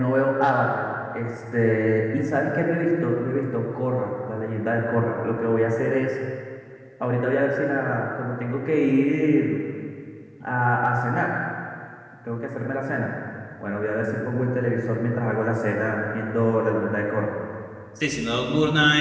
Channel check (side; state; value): both; identical; correlation 1.00